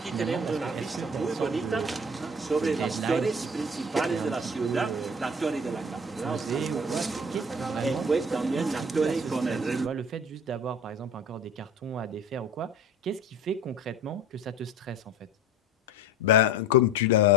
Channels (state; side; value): normal; both; correlation 0.40